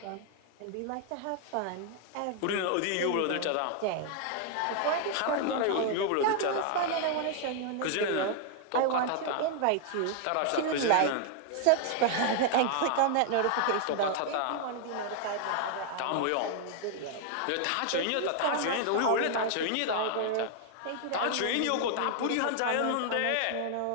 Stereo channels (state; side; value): different; both; correlation 0.00